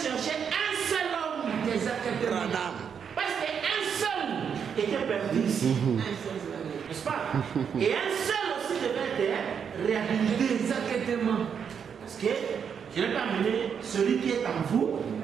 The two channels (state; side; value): quieter; left; 7.2 dB